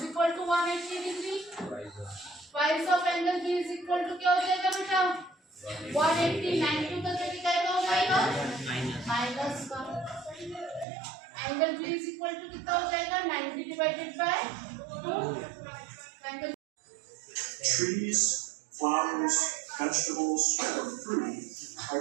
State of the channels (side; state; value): left; drops out; at 10.9 s